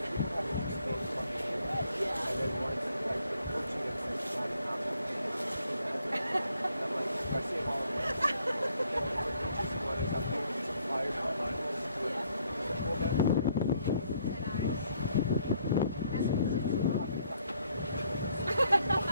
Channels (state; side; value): inverted; both; correlation -0.69